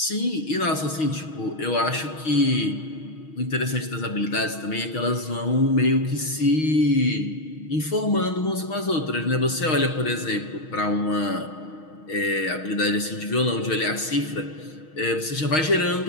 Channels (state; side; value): late; right; 6.4 ms